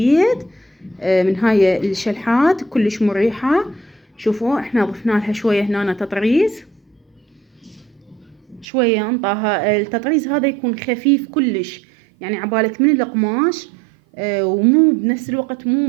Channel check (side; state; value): left; drops out; at 8.7 s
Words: من هاي الشلحات كلش مريحة. شوفوا احنا ضفنا لها شوية هنا تطريز، شوية انطاها التطريز هذا يكون خفيف كلش، يعني عبالك من القماش ومو بنفس الوقت مو